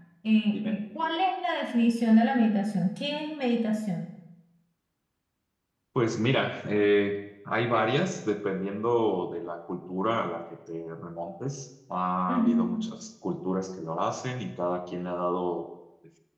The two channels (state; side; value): identical; both; correlation 1.00